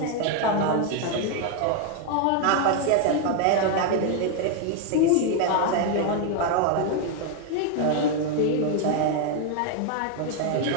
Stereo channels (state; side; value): different; both; correlation 0.01